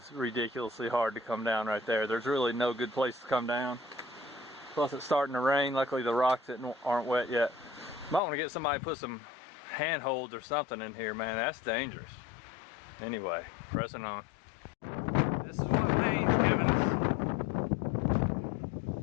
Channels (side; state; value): right; drops out; at 8.2 s